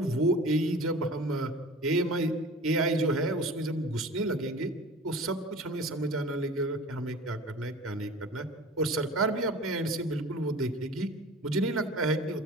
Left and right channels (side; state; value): both; normal; correlation 0.40